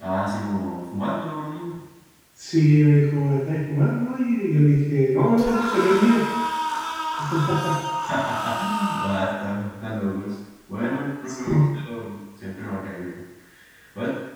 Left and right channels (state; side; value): identical; both; correlation 1.00